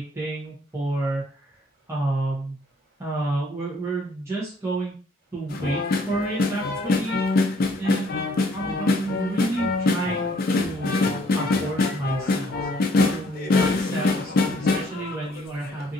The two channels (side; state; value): both; normal; correlation 0.63